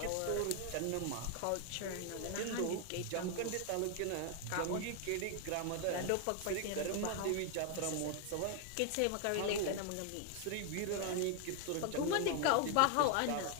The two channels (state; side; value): different; both; correlation 0.00